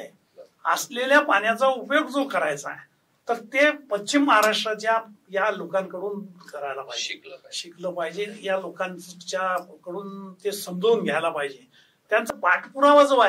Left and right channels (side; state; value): both; identical; correlation 1.00